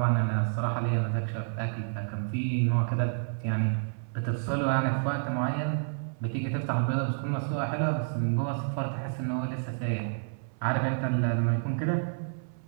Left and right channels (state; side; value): silent; left; 58 dB below the other